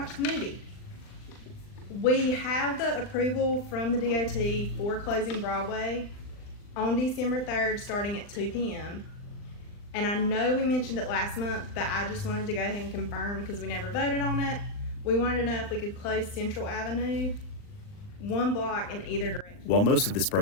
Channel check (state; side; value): late; right; 39 ms